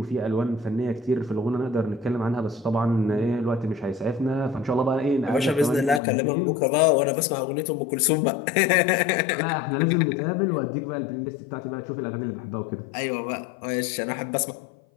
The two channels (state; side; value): drops out; right; at 6.0 s